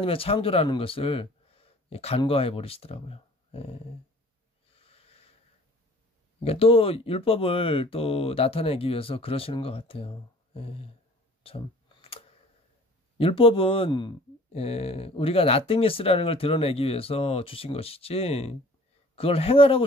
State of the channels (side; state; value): both; normal; correlation 0.49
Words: 창조라는 것을 간과해 버리시더라고요. 그러니까 또 율법을 또 나타내기 위해서 그러시는 것 같아요. 참 율법은 우리가 나땡니스라는 걸 드러내기 위해서 주신 것이지 그걸